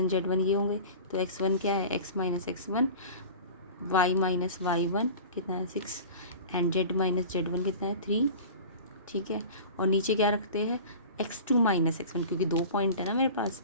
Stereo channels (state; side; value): inverted; both; correlation -0.37